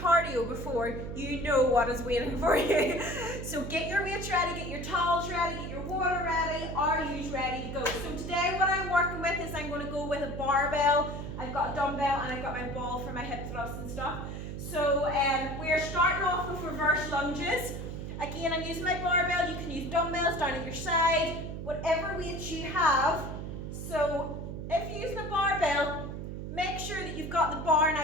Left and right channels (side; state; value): right; noise; hum, 7 dB below the sound